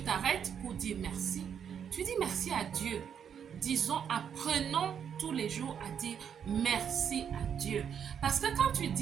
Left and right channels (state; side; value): quieter; left; 8.0 dB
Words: t'arrêtes pour dire merci, tu dis merci à Dieu. Disons, apprenons tous les jours à dire merci à Dieu. Parce que quand tu